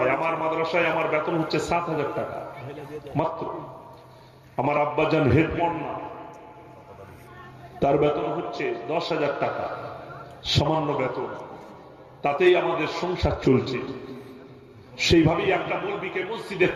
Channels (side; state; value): both; identical; correlation 1.00